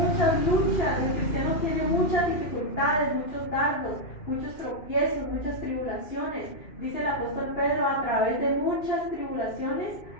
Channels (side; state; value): right; late; 2.6 ms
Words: luchas, el cristiano tiene muchas dificultades, muchos dardos, muchos tropiezos, muchas tribulaciones. Dice el apóstol Pedro, a través de muchas tribulaciones